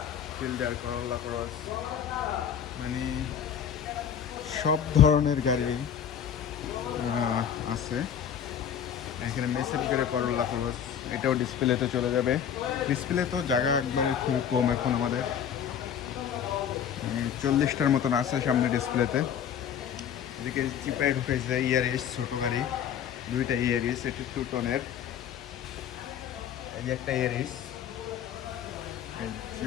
ফিল্ডার, করলা ক্রস, মানে সব ধরনের গাড়ি আছে এখানে। মেসেজ করে করলা ক্রস, এটাও ডিসপ্লেতে চলে যাবে। ডিসপ্লে তো জায়গা একবারে খুব কম এখন আমাদের, 40টার মতন আছে সামনে ডিসপ্লেতে। এদিকে চিপায় ঢুকেছে ইয়ারিস, ছোটো গাড়ি দুইটা ইয়ারিস, এটি 2 টনের। এই যে একটা ইয়ারিস,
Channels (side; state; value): right; quieter; 8.6 dB